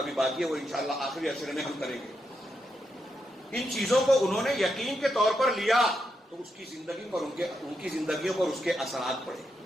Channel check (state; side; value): normal; both; correlation 0.83